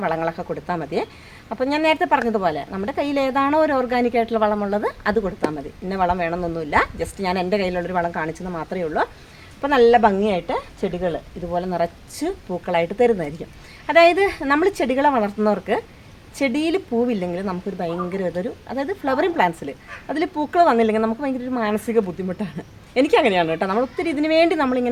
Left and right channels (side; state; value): both; identical; correlation 1.00